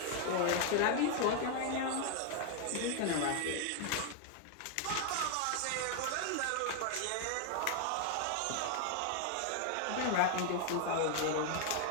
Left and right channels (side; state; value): both; different; correlation 0.00